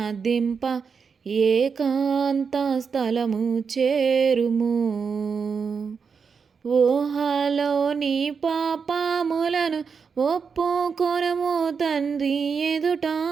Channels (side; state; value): left; quieter; 5.8 dB